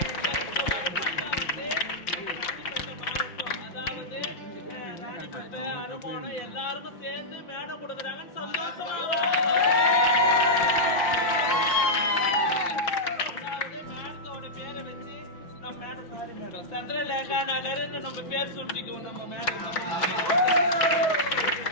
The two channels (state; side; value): late; right; 5.6 ms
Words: மாவட்டம், அதாவது ராணிப்பேட்டை, அனுமோனம் எல்லாருக்கும் சேர்ந்து மேடம் கொடுக்குறாங்கன்னு சந்தோஷமா. அதாவது மேடத்தோட பேரை வச்சு நம்ம மேடம், சாரி மேடம், சந்திரலேகா நகர்னு நம்ம பேர் சுட்டிக்குவோம். நம்ம மேடம்